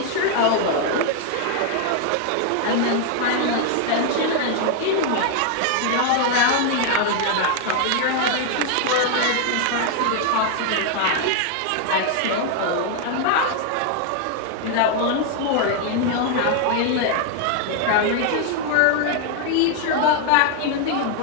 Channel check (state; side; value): different; both; correlation 0.00